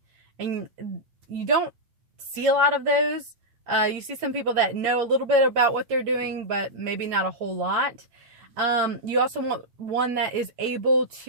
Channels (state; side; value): late; left; 8.9 ms